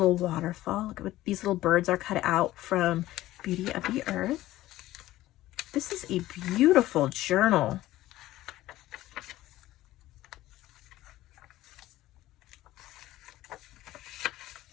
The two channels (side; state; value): right; quieter; 15.7 dB